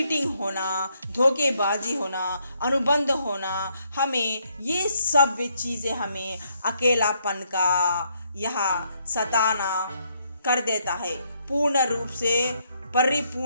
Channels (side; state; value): both; inverted; correlation -0.73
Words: होना, धोखेबाजी होना, अनुबंध होना। हमें ये सब चीज़ें हमें अकेलापन का यहाँ सताना कर देता है। पूर्ण रूप से